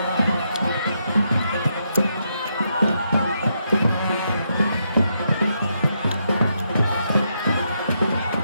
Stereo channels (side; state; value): both; inverted; correlation -0.80